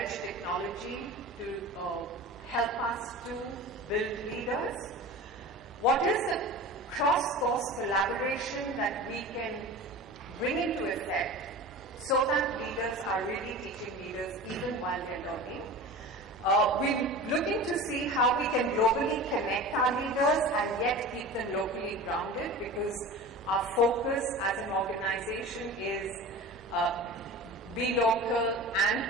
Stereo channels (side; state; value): both; normal; correlation 0.34